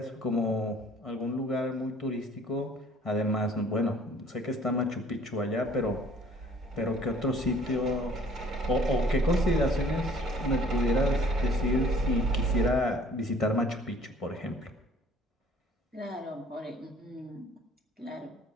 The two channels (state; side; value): normal; both; correlation 0.55